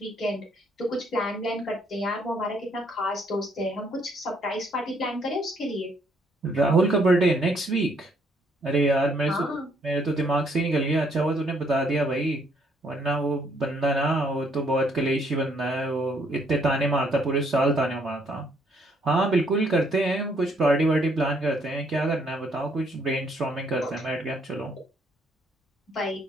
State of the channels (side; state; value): both; normal; correlation 0.68